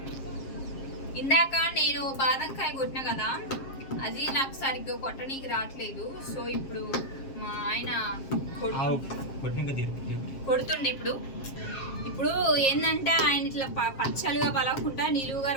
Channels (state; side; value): late; right; 7.4 ms